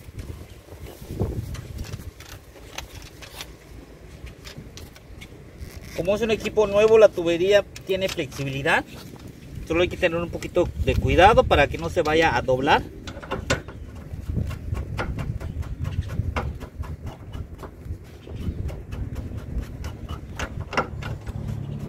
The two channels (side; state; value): both; identical; correlation 1.00